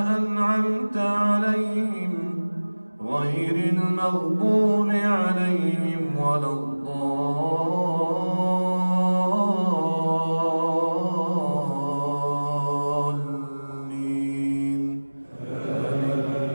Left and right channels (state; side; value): inverted; both; correlation -1.00